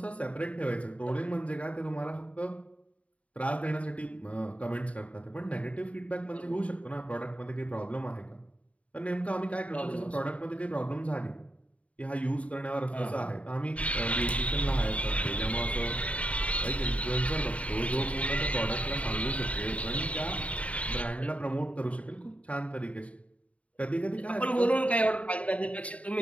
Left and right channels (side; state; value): right; late; 0.066 ms